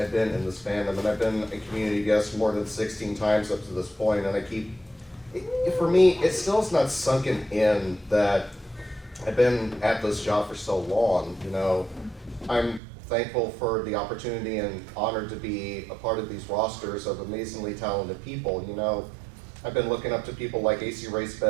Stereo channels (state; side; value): drops out; left; at 12.8 s